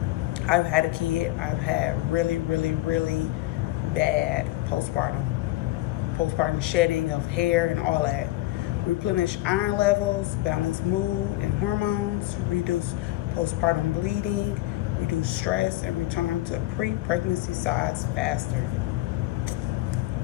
I've had a kid, I've had really bad postpartum shedding of hair and all that. Replenish iron levels, balance mood and hormones, reduce postpartum bleeding, reduce stress, and return to pre-pregnancy size faster.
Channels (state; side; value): quieter; right; 17.3 dB